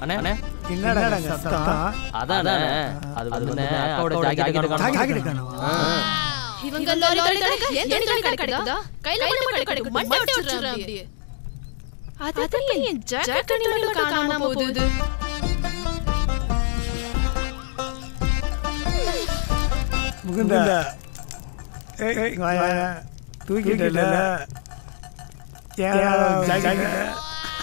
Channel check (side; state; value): right; silent; digital silence